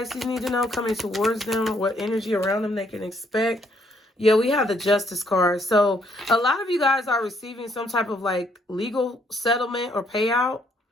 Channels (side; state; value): both; normal; correlation 0.69